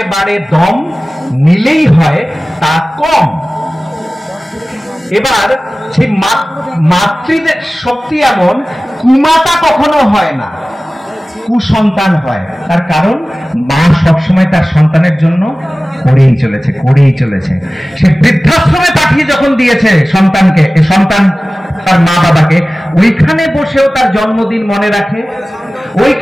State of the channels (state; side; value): normal; both; correlation 0.97